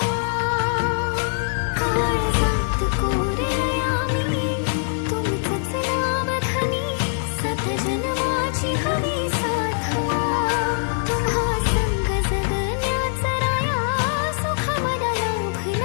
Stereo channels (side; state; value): right; silent; 56 dB below the other